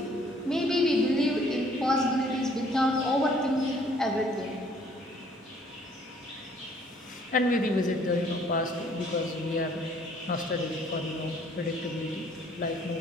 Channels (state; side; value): normal; both; correlation 0.60